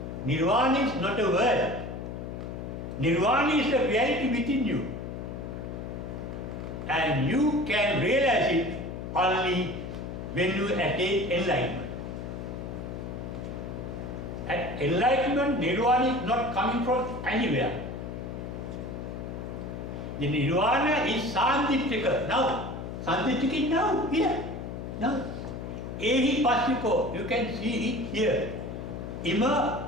Nirvana is not a word. Nirvana is a reality within you. And you can realize it only when you attain enlightenment. At enlightenment, Nirvana is not coming from anywhere. The Nirvana is Sandiptika. Now, Sandiptika is now, here. Now, Ehi Pasiko, you can see it here.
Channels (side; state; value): left; noise; hum, 7 dB below the sound